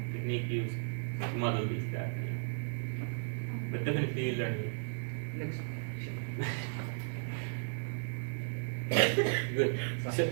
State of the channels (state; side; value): silent; left; digital silence